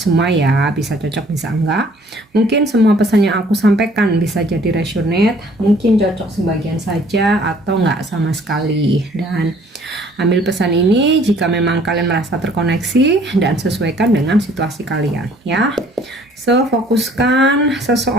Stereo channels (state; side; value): normal; both; correlation 0.57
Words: ya, bisa cocok bisa enggak. Mungkin semua pesan yang aku sampaikan bisa jadi resonate, mungkin cocok sebagian saja atau enggak sama sekali. Dan ambil pesan ini jika memang kalian merasa terkoneksi dan sesuaikan dengan situasi kalian ya. So, fokuskan